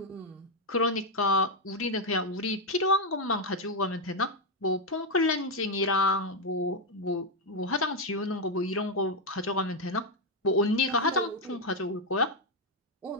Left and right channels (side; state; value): both; normal; correlation 0.03